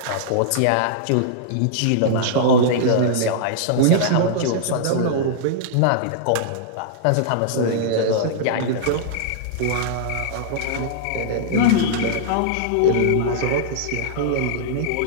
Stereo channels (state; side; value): different; both; correlation -0.01